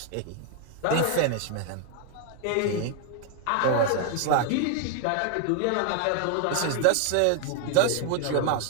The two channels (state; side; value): different; both; correlation 0.00